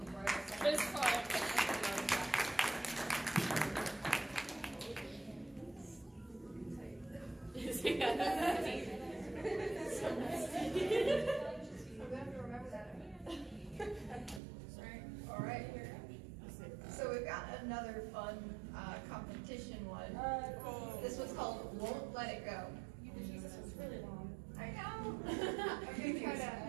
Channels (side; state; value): left; drops out; at 14.4 s